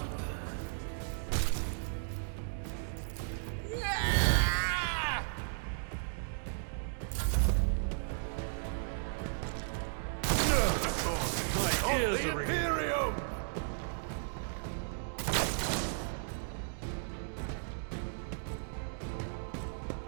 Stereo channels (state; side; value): silent; left; digital silence